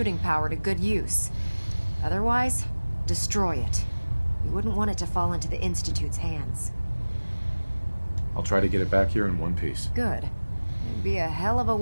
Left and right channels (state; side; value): inverted; both; correlation -1.00